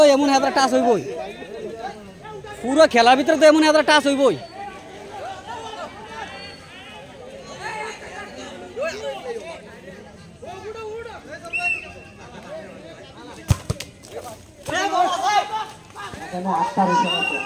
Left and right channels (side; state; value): both; identical; correlation 1.00